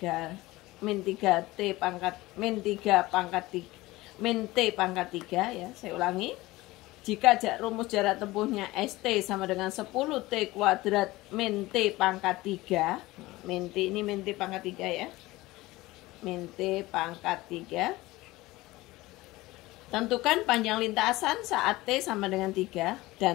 T pangkat T pangkat 3 ya, saya ulangi. Jika rumus jarak tempuhnya ST sama dengan 10T kuadrat min T pangkat 3, min T ini min T pangkat 3 ya, min T pangkat 3. Tentukan panjang lintasan saat T sama dengan 3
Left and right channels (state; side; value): quieter; right; 19.3 dB